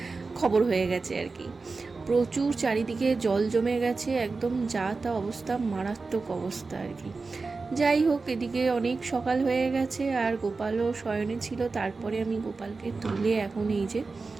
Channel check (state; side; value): quieter; left; 4.1 dB